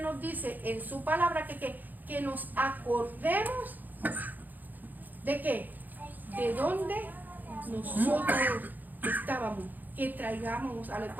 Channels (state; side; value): late; left; 0.085 ms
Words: dice en su palabra que nos acordemos de qué, de dónde nosotros estábamos, que traigamos a Él.